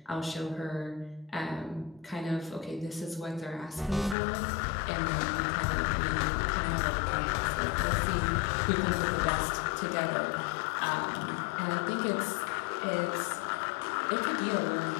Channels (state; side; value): drops out; right; at 4.2 s